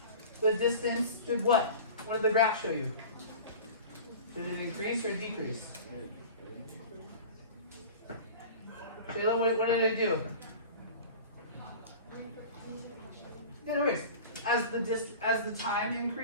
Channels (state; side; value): inverted; both; correlation -0.37